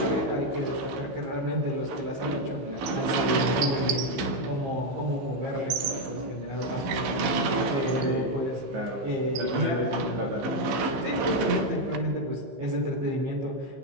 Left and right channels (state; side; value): late; left; 15 ms